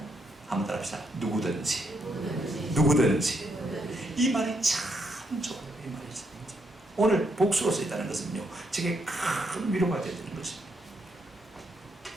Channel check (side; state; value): both; normal; correlation 0.77